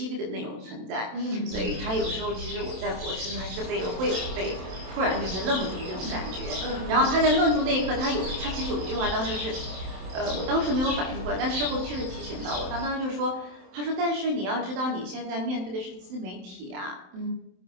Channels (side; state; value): left; late; 27 ms